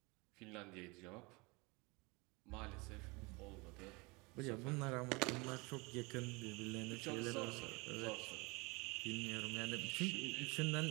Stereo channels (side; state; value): left; quieter; 26.6 dB